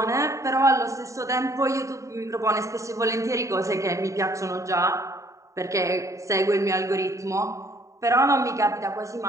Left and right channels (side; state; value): left; late; 0.15 ms